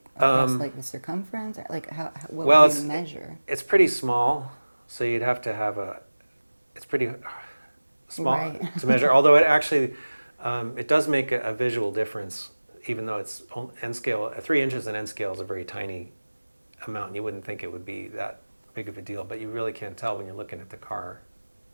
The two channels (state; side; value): inverted; both; correlation -1.00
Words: across like the circumference? Like, what would he measure? It's pretty small, so you'd have to have it's pretty small Right. to measure. Although it actually, it does make a visual difference, even though it's N scale. 3 inches in N scale is a very tiny amount, and you wouldn't think it would be that big of a deal, but you really can tell when you're looking at the car